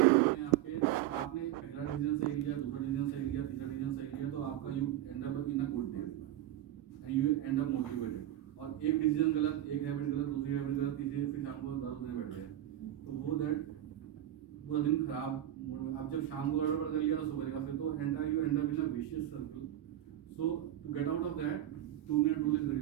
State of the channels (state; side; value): quieter; left; 12.8 dB